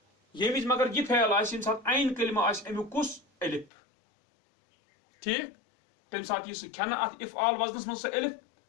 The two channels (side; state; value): right; drops out; at 3.7 s